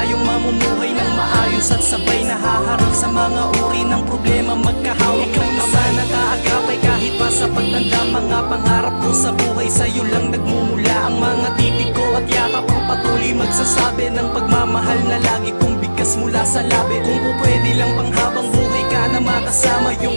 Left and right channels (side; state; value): both; inverted; correlation -1.00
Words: mamumuhay ng maayos at sabay nahaharap sa mga uri ng problema. Magkahawak ng ama na kaagapay kahit pa sa pagtanda. Mga pangarap ko sa buhay, sa'yo lang nagmumula ang mga titig ko at yakap. Ang patuloy magsasabi ng pagmamahal na lagi kong bigkas mula sa labi. Kung pwede lang panghabang buhay ka na makasama, yung